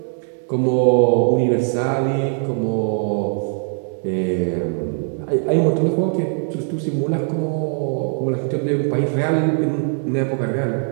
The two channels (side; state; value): left; silent; 57 dB below the other